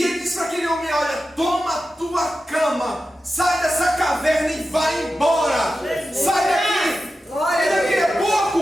ele disse para aquele homem: olha, toma a tua cama, sai dessa caverna e vai embora. Sai daqui. E daqui a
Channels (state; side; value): normal; both; correlation 0.92